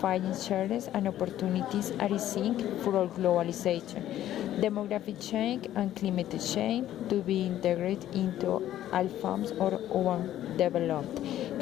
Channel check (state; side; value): quieter; right; 12.5 dB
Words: finding shares and opportunities arising from globalization, demographic change and climate change to be integrated into all forms or urban development.